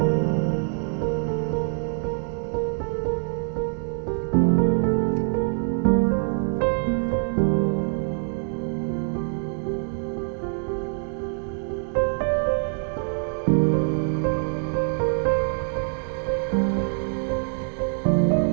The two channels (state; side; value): silent; left; 62 dB below the other